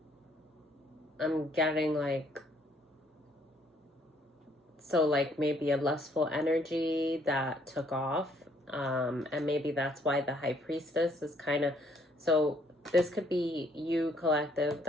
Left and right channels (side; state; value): both; normal; correlation 0.66